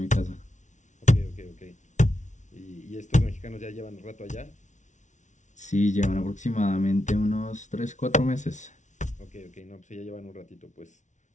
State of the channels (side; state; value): right; late; 0.36 ms